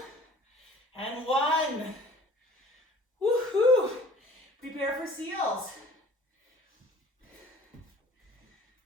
and 1. Woohoo! Prepare for seals.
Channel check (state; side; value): normal; both; correlation 0.48